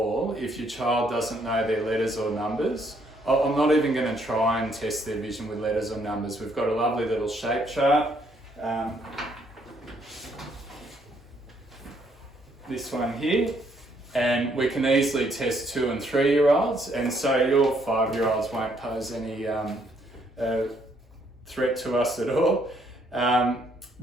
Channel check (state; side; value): normal; both; correlation 0.70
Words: if your child doesn't know their letters or numbers. I'm not even going to try and test their vision with letters or numbers. We've got a lovely little shape chart. This one here. And we can easily test 2 and 3-year-olds. And so your 5-year-olds won't pose any threat to us at all.